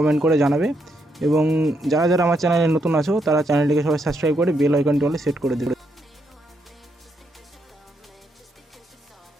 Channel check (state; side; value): normal; both; correlation 0.78